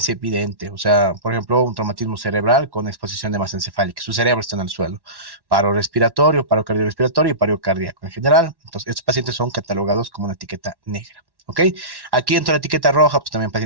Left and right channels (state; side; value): late; left; 1.1 ms